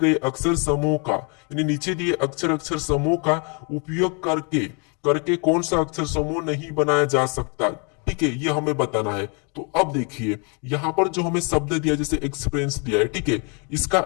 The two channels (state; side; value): quieter; right; 35.5 dB